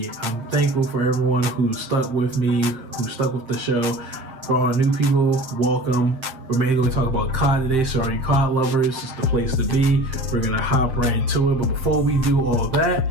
I'm thankful for everyone who stuck with me, who stuck with the show. For all the new people, welcome. We're mainly going to talk about COD today, so all you COD lovers, it's the place to be. We're going to hop right into it. But before we do all of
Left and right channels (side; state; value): left; late; 7.6 ms